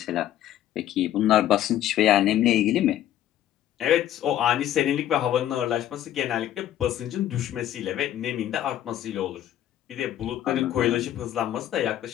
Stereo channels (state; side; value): quieter; right; 12.0 dB